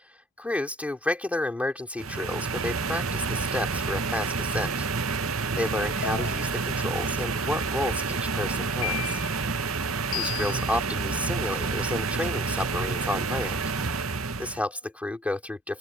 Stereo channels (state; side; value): normal; both; correlation 0.51